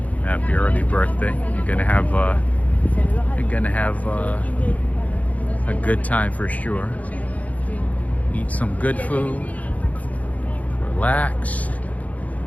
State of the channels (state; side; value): late; right; 0.072 ms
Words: Happy early birthday. You're gonna have a good time for sure. Eat some good food, relax,